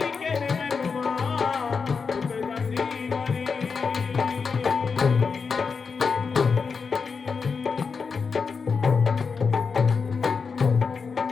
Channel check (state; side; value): quieter; right; 5.3 dB